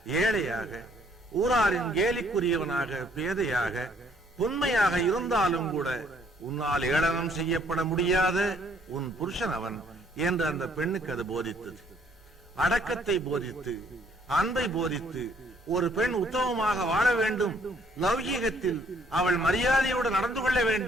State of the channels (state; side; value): normal; both; correlation 0.65